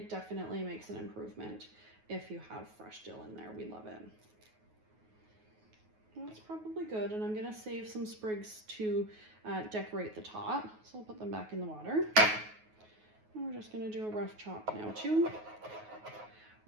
definitely makes an improvement if you have fresh dill in there. We love it. Well, that's probably good, and I'm gonna save some sprigs to decorate the top. So I'll put them back in the water. And we're just gonna do a rough chop now too.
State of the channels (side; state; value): left; late; 9.4 ms